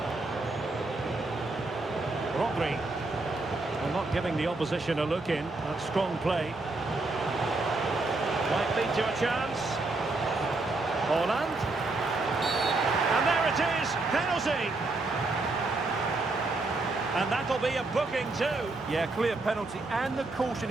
Rodri. Well, not giving the opposition a look in. That's strong play. Might lead to a chance. Holland. And there it is, penalty. And that'll be a booking too. Yeah, clear penalty, and the caution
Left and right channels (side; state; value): left; quieter; 3.2 dB